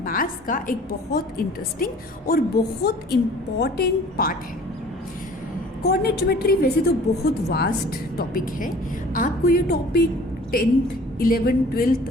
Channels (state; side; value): normal; both; correlation 0.49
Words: का एक बहुत इंटरेस्टिंग और बहुत इम्पॉर्टेंट पार्ट है। कोऑर्डिनेट ज्योमेट्री वैसे तो बहुत वास्ट टॉपिक है। आपको ये टॉपिक 10th, 11th,